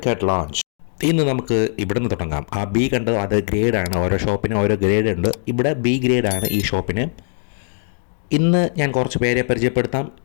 launch. ഇന്ന് നമുക്ക് ഇവിടെ നിന്ന് തുടങ്ങാം. ആ ബി കണ്ടോ, അത് ഗ്രേഡാണ്. ഓരോ ഷോപ്പിനും ഓരോ ഗ്രേഡ് ഉണ്ട്. ഇവിടെ ബി ഗ്രേഡാണ് ഈ ഷോപ്പിന്. ഇന്ന് ഞാൻ കുറച്ച് പേരെ പരിചയപ്പെടുത്താം.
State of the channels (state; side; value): silent; right; digital silence